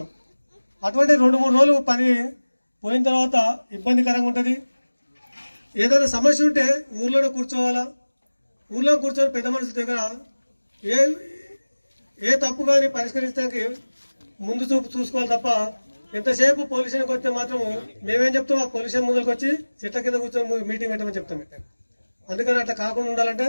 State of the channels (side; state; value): both; inverted; correlation -1.00